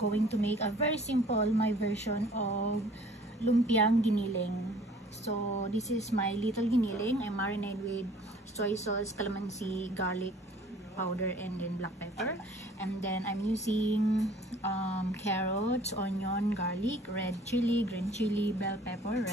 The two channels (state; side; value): normal; both; correlation 0.52